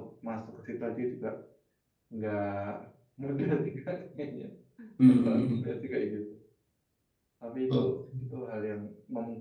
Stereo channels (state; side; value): identical; both; correlation 1.00